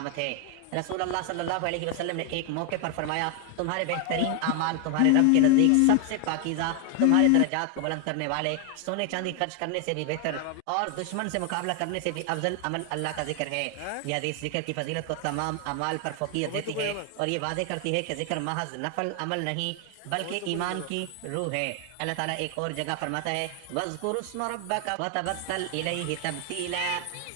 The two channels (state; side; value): different; both; correlation 0.00